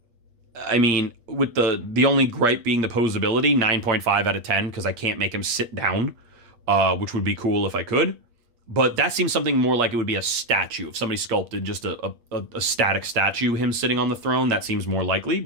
I mean, with the only gripe being the posability, 9.5 out of 10, because I can't make him sit down, which would be cool if I could. But that seems something more like it would be a statue. If somebody sculpted just a static statue, him sitting on the throne, that seems more likely.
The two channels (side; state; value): left; late; 8.5 ms